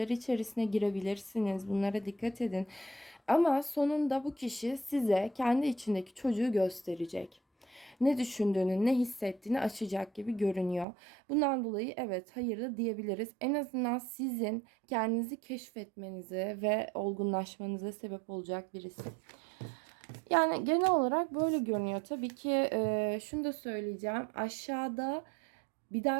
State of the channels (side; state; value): left; drops out; at 10.9 s